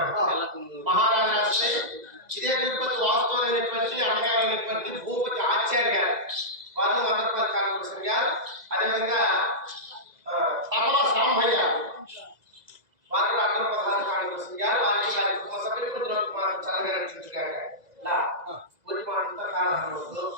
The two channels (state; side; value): late; left; 2.0 ms